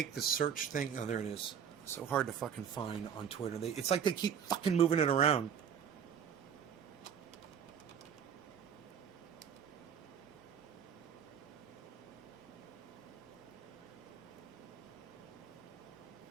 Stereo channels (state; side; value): quieter; left; 8.0 dB